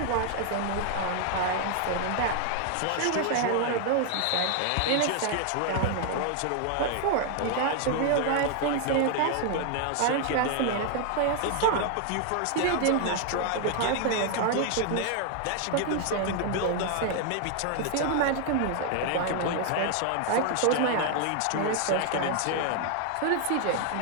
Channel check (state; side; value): different; both; correlation 0.00